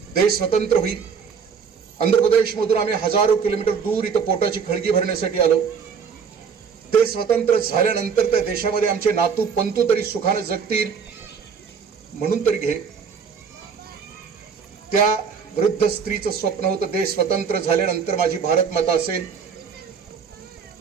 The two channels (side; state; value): left; quieter; 6.3 dB